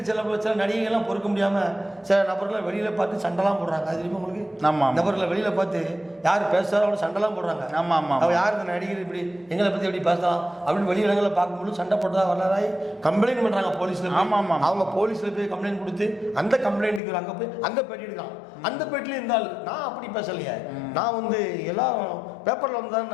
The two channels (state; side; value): drops out; right; at 17.0 s